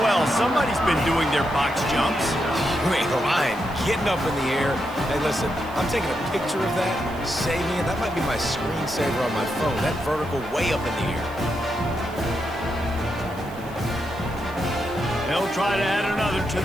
well, somebody's been doing their box jumps. You ain't lying. Getting up in the air. Hey, listen, I'm taking a picture of that, saving it. That might be my screensaver on my phone. That vertical way up in the air. They'll try to add another to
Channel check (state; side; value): noise; right; hiss, 22 dB below the sound